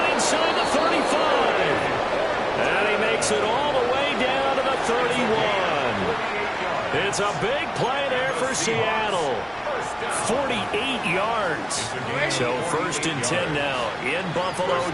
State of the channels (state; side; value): identical; both; correlation 1.00